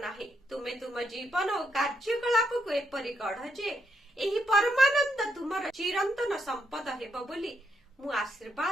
तुमे तुम जीवन और कार्यकलाप को एपरि गढ़ जे एही परमानंद तुमर चिरंतन संपद हेबो बोली मु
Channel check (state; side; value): normal; both; correlation 0.78